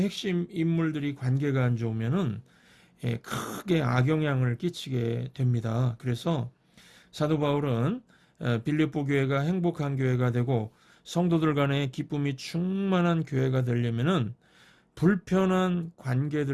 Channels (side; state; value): both; identical; correlation 1.00